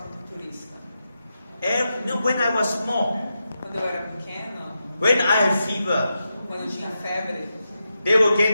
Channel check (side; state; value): both; inverted; correlation -0.88